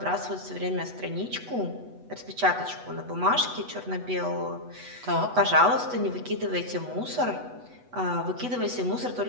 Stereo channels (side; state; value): left; late; 8.1 ms